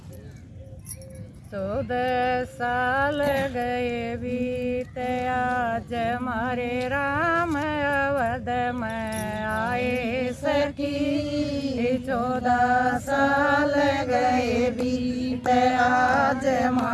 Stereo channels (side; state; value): both; identical; correlation 1.00